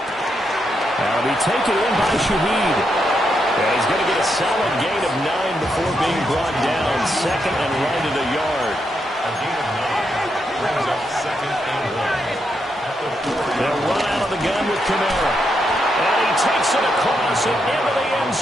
That'll be taken in by Shaheed. And he's going to get a solid gain of 9 before being brought down. 2nd and right at a yard. A gain of 9 brings up 2nd and 1. They'll run out of the gun with Kamara. And he takes it across and into the end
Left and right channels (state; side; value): normal; both; correlation 0.81